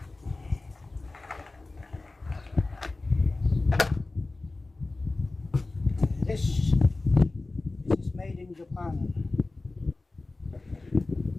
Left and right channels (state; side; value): quieter; right; 3.3 dB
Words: This is made in Japan.